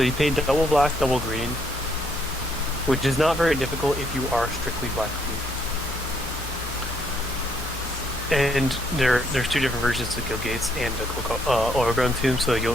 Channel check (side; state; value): both; normal; correlation 0.71